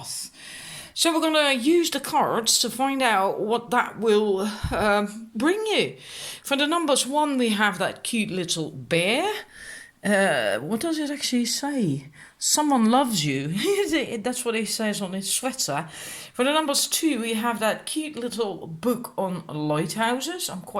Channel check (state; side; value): identical; both; correlation 1.00